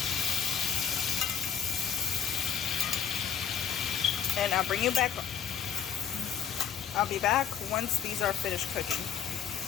And I'll bring you back. I'll be back once these are finished cooking.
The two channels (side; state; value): right; quieter; 8.1 dB